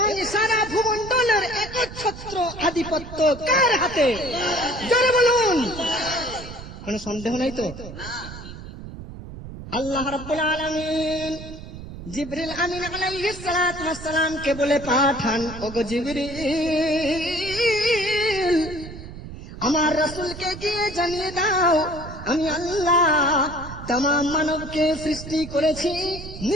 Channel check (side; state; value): right; noise; rumble, 12 dB below the sound